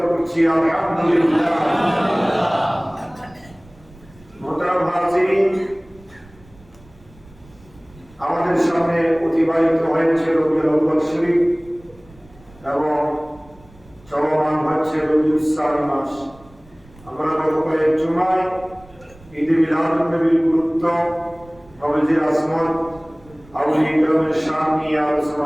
করছি আলহামদুলিল্লাহ মোহতারাম হাজিরিন আমাদের সামনে অতিবাহিত হয়েছে রবিউল আউয়াল শরীফ এবং চলমান হচ্ছে রবিউল সানি মাস আমরা গত কয়েক জুমায় ঈদে মিলাদুন নবীর গুরুত্ব নবীজির আজমত আউলিয়া কেরামের শান নিয়ে আলোচনা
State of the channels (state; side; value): noise; right; rumble, 25 dB below the sound